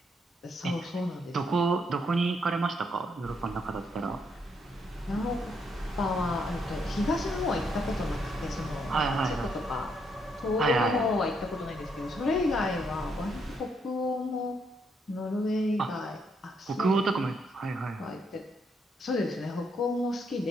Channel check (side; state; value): both; normal; correlation 0.75